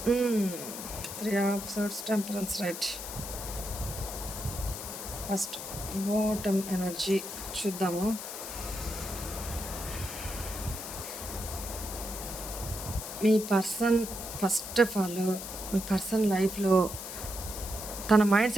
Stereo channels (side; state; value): left; noise; hiss, 8 dB below the sound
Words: 3 of swords, temperance, right. First bottom energy చూద్దాము. మీ పర్సన్ ఫస్ట్ ఆఫ్ ఆల్ మీ పర్సన్ లైఫ్లో తన మైండ్